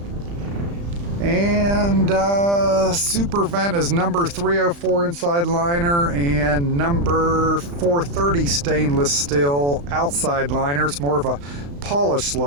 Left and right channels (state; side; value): late; left; 35 ms